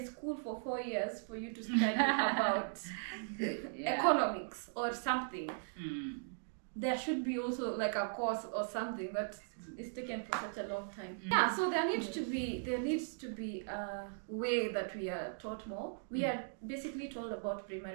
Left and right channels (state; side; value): silent; left; digital silence